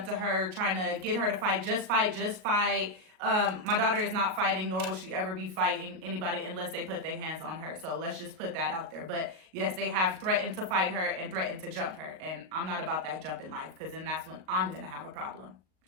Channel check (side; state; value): left; late; 38 ms